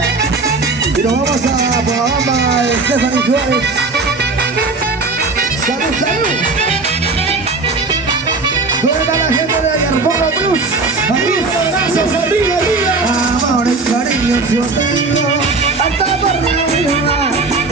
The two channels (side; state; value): left; quieter; 3.8 dB